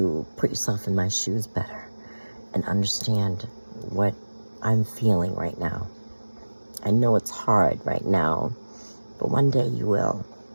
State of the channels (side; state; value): both; inverted; correlation -1.00